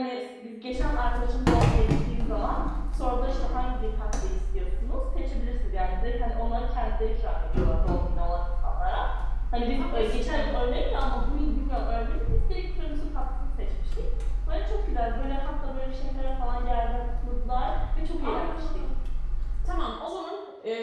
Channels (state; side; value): identical; both; correlation 1.00